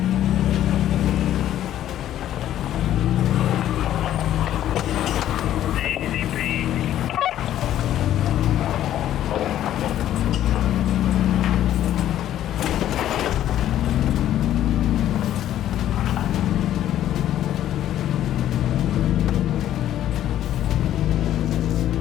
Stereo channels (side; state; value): right; quieter; 12.0 dB